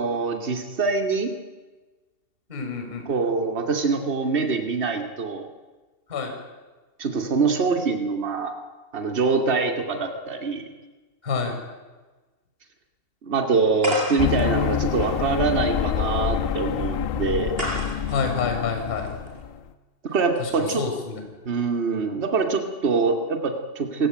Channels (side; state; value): left; late; 2.7 ms